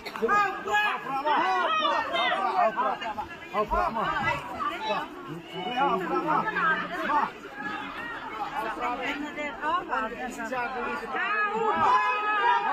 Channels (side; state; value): both; identical; correlation 1.00